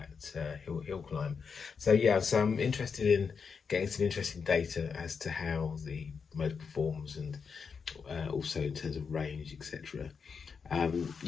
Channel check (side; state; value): right; quieter; 5.8 dB